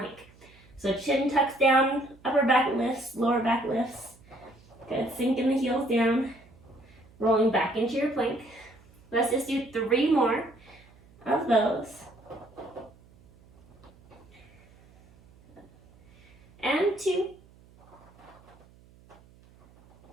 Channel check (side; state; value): right; noise; hum, 27 dB below the sound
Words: So chin tucks down, upper back lifts, lower back lifts. Good, sinking the heels down, rolling back into your plank. Let's just do 3 more of those. And 2.